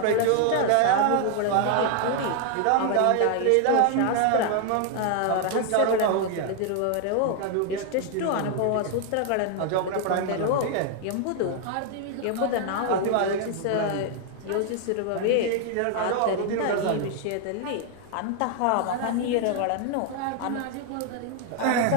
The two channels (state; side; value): different; both; correlation 0.00